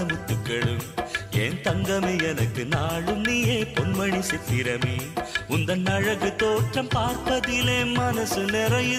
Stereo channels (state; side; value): identical; both; correlation 1.00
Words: முத்துக்களும் என் தங்கமே எனக்கு நாளும் நீயே பொன்மணி சித்திரமே உந்தன் அழகு தோற்றம் பார்ப்பதிலே மனசு